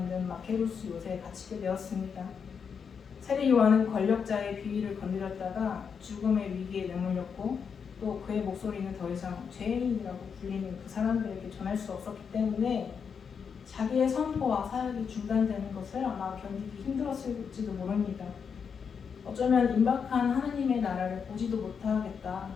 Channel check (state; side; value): quieter; right; 6.5 dB